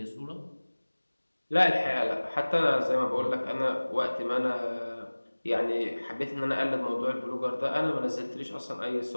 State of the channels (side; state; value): both; inverted; correlation -1.00